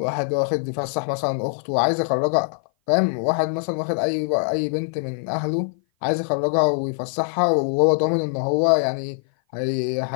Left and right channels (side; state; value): right; silent; 57 dB below the other